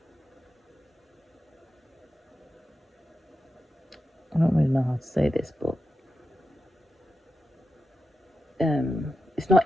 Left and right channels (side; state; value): both; normal; correlation 0.89